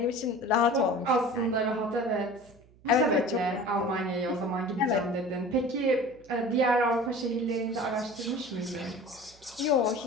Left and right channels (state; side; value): noise; right; hum, 27 dB below the sound